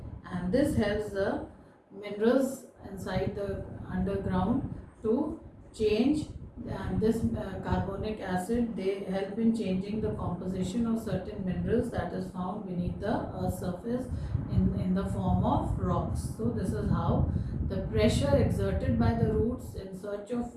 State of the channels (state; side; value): identical; both; correlation 1.00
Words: and this helps the minerals inside the underground to change, and this carbonic acid, they help in changing the composition of certain minerals that is found beneath the earth's surface in the form of rocks. So this is how the pressure exerted by the roots in search of